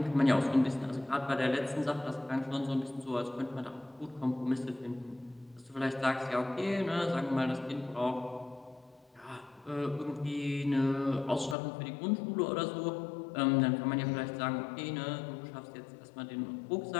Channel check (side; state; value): right; drops out; at 11.6 s